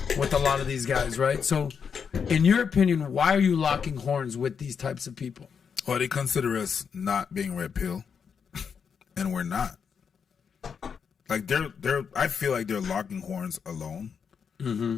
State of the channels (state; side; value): quieter; right; 6.6 dB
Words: with a lot of these guys, right? So, in your opinion, why are you locking horns with these types of people? Well, they consider us not being red pill, and we're not. Like they're. I feel like they're locking horns alone,